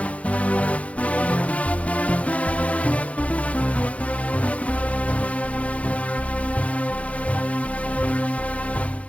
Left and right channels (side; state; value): right; late; 0.065 ms